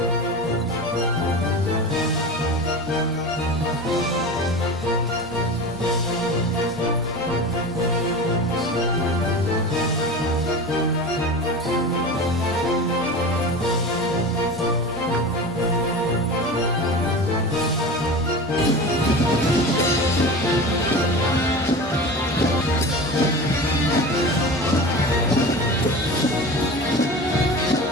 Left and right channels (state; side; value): normal; both; correlation 0.31